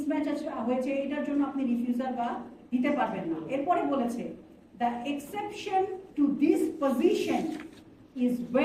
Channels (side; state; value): both; identical; correlation 1.00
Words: হয়েছে, এটার জন্য আপনি রিফিউজাল বা দিতে পারবেন না। এরপরে বলেছে the exception to this position is